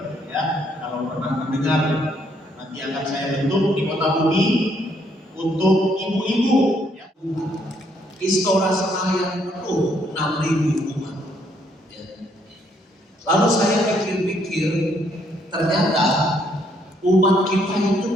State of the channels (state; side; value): normal; both; correlation 0.70